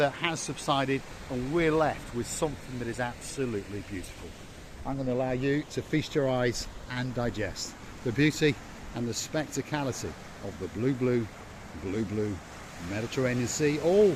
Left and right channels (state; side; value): identical; both; correlation 1.00